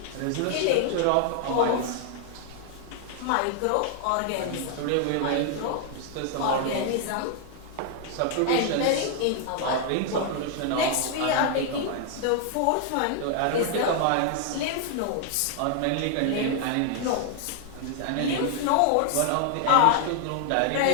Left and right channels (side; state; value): both; different; correlation 0.00